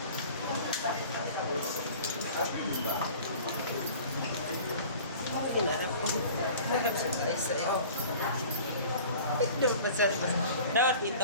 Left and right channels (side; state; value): both; inverted; correlation -0.44